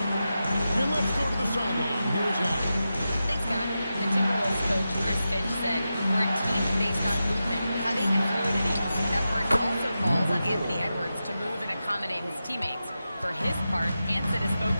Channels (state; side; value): inverted; both; correlation -0.91